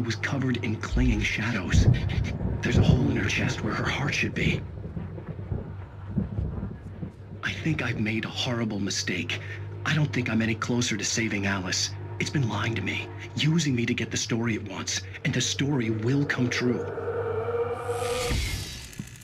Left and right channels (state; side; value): identical; both; correlation 1.00